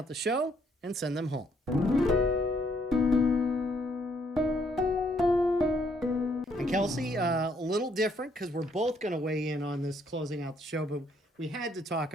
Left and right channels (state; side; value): normal; both; correlation 0.69